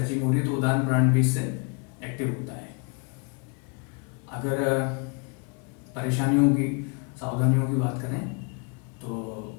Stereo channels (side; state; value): right; quieter; 34.2 dB